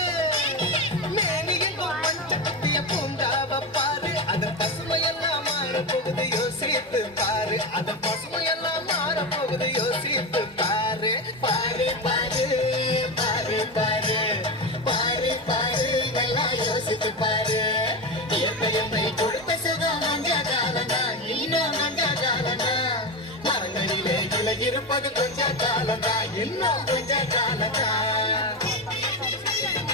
மேனி எங்கும் பச்சை குத்திய பூங்காவ பாரு. அதன் பசுமையெல்லாம் மாற போகுது யோசித்து பாரு, அதன் பசுமையெல்லாம் மாற போகுது யோசித்து பாரு. பாரு பாரு பாரு பாரு பாரு பாரு, நல்லா யோசித்து பாரு. என்னை கொடுத்த சுகம் மஞ்ச காலம்தான், இன்னும் மஞ்ச காலம்தான். மரங்களிலே கிளை இருப்பது கொஞ்ச காலம்தான், இன்னும் கொஞ்ச காலம்தான்.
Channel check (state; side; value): normal; both; correlation 0.17